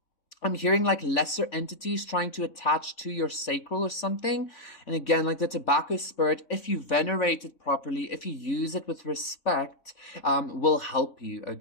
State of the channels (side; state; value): right; late; 3.6 ms